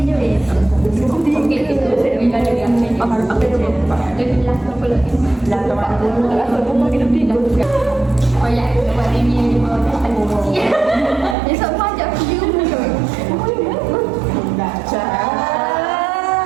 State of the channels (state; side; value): drops out; left; at 11.4 s